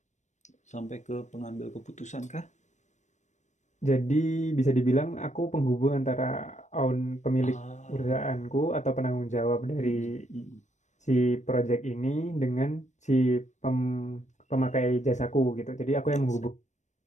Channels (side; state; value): right; late; 0.34 ms